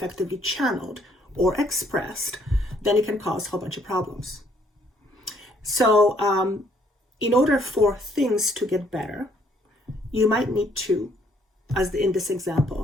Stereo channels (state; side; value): normal; both; correlation 0.65